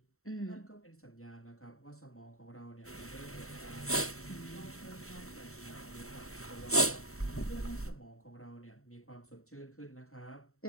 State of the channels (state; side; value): late; right; 0.63 ms